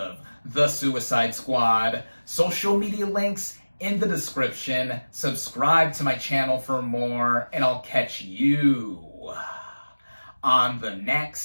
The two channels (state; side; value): inverted; both; correlation -1.00